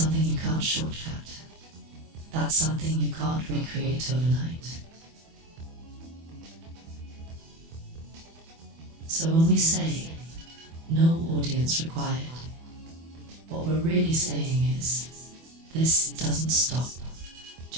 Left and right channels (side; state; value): left; late; 24 ms